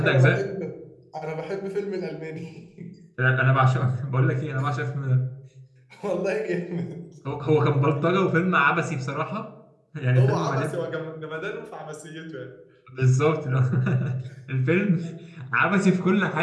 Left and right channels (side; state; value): both; identical; correlation 1.00